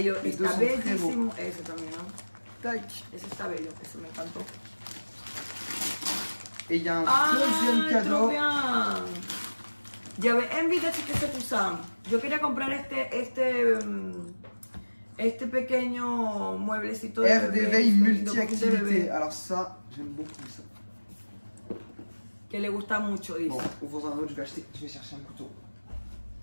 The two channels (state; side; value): inverted; both; correlation -1.00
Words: Les deux está sont très bellísimo. Ese también, ¿no? Tac. Ese está bello, ese me encantó. Et il y a un Ah, deuxième trop cadeau. bien. J'avais envie de que se pusan. Yo quería comprar este pequeño mueblecito de Air bebé, d'éveil de multi-activité. bebé, Alors ça, j'aime beaucoup ça. que le gusta mucho, dice. Bon, ouvre un autre, je vais chercher un couteau.